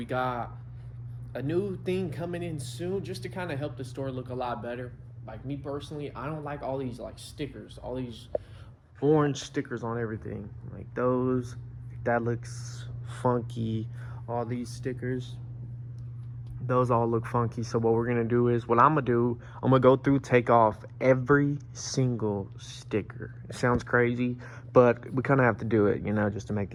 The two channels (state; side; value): identical; both; correlation 1.00